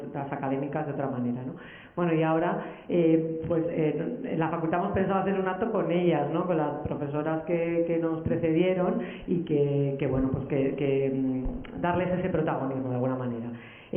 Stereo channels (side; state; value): both; identical; correlation 1.00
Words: académicas de otra manera, ¿no? Bueno, y ahora, en la facultad hemos pensado hacer un acto con ellas, ¿no?, con las profesoras que nos precedieron y que bueno, pues que darles ese protagonismo de alguna manera.